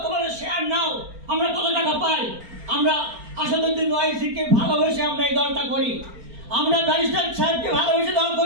তোমাদের শেয়ার নাও। আমরা কত টাকা পাই? আমরা আসাদুদ্দিন ওয়াইসিকে ভালোবেসে আমরা এই দলটা করি, আমরা ব্যারিস্টার সাহেবকে ভালোবেসে দল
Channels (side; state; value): left; late; 4.4 ms